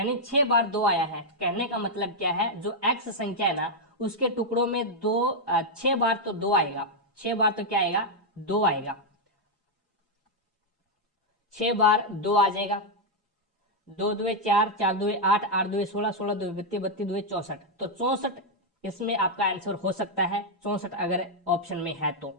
6 बार 2 आया है। कहने का मतलब क्या है, जो x संख्या है ना उसके टुकड़ों में 6 बार तो 2 आएगा, 6 बार तो क्या आएगा 2 आएगा, 6 बार 2 आ जाएगा। 2 2 4 4 2 8 8 2 16 16 2 32 32 2 64, तो 64 इसमें आपका आंसर हो सकता है। 64 अगर ऑप्शन में है तो,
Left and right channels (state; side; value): normal; both; correlation -0.02